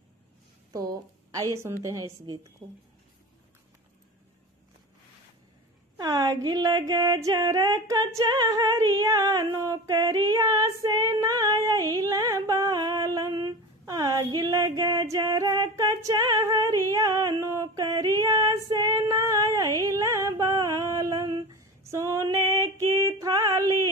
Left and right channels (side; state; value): both; normal; correlation 0.30